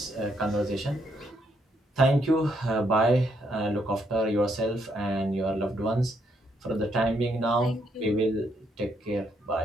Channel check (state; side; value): normal; both; correlation 0.74